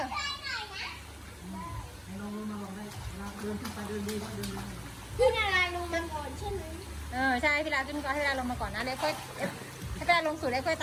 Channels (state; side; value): identical; both; correlation 1.00